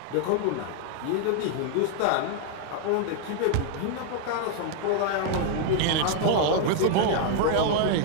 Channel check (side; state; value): both; different; correlation 0.00